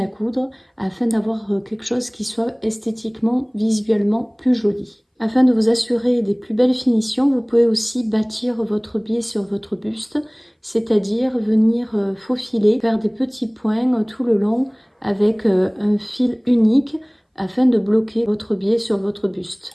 coudre, afin d'avoir quelque chose qui soit esthétiquement, visuellement plus joli. Afin de vous assurer des plus belles finitions, vous pouvez aussi bâtir votre biais sur votre buste, c'est-à-dire venir faufiler, faire des petits points tout le long avec un fil unique afin de bloquer votre biais sur votre buste.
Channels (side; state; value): both; identical; correlation 1.00